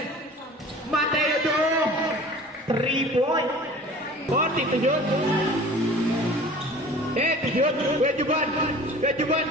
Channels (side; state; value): both; normal; correlation 0.43